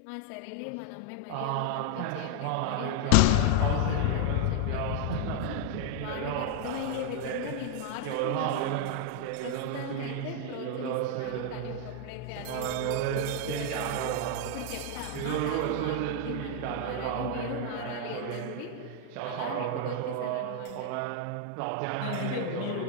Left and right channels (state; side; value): different; both; correlation 0.00